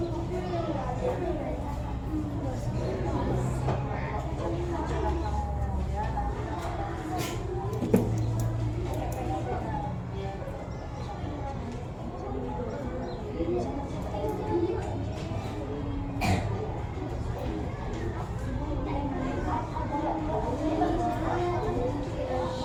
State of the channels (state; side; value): identical; both; correlation 1.00